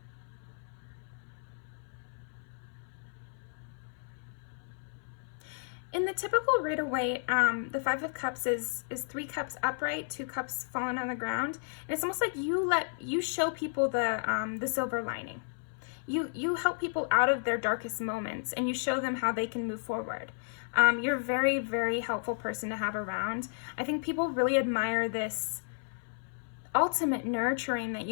In the typical Rider-Waite, the 5 of Cups is 3 cups upright, 2 cups fallen on the ground. And it's almost like you show people the silver lining. You help people out of their darkest moments, and you show them how they can move forward. You're a very, very helpful person to have around. I think people really admire this ultimate nurturing that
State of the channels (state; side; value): silent; right; 56 dB below the other